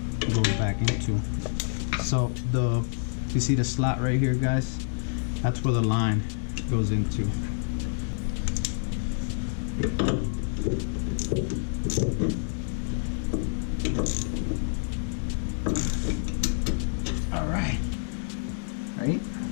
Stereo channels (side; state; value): right; silent; digital silence